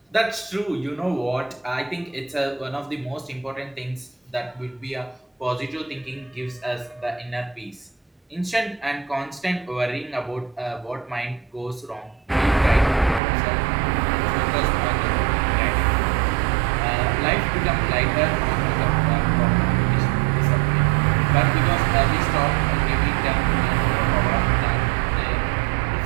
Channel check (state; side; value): drops out; left; at 13.2 s